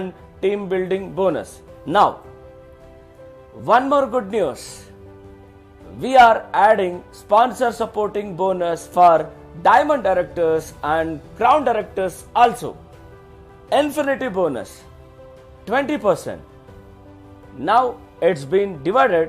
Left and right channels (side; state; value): both; identical; correlation 1.00